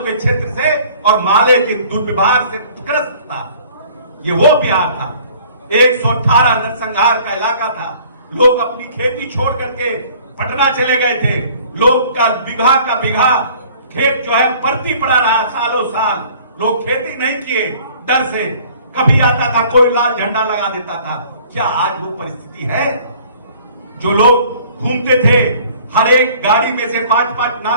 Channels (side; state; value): both; inverted; correlation -0.53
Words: क्षेत्र से और माले के दुर्व्यवहार से ग्रस्त था। ये वो बिहार था। 118 नरसंहार का इलाका था। लोग अपनी खेती छोड़ करके पटना चले गए थे। लोग का बिघा खेत जो है परती पड़ा रहा सालों साल। लोग खेती नहीं किए डर से। कभी आता था कोई लाल झंडा लगा देता था। क्या आज वो परिस्थिति है? जो लोग घूमते थे, हर एक गाड़ी में से 5-5